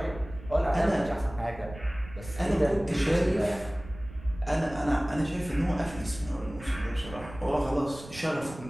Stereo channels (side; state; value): right; noise; rumble, 15 dB below the sound